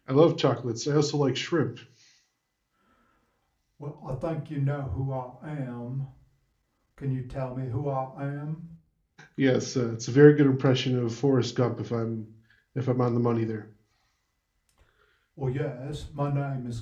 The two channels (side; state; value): both; identical; correlation 1.00